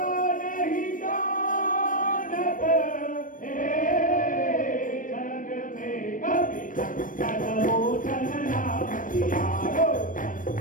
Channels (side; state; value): right; late; 0.38 ms